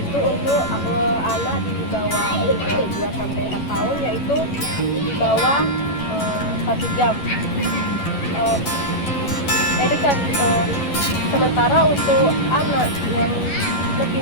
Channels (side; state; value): right; late; 11 ms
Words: untuk anak di bawah 2-4 tahun, yaitu di bawah 1 jam. Edukasi sementara untuk anak yang lebih